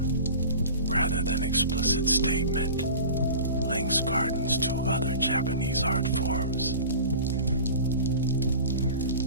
rather than explicit statement, links gardens to other Japanese art forms.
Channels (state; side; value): inverted; both; correlation -0.38